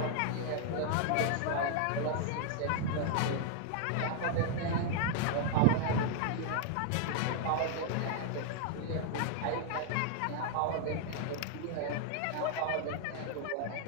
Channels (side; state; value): both; different; correlation 0.00